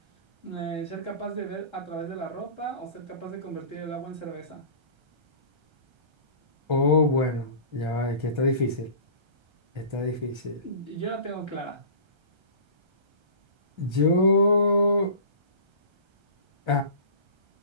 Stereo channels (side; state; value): left; late; 1.3 ms